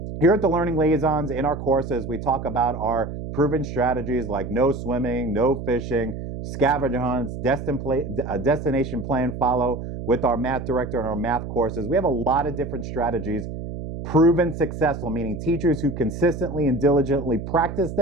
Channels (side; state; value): right; noise; hum, 7 dB below the sound